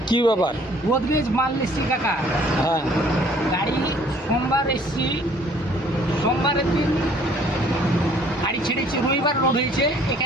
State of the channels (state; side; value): normal; both; correlation 0.58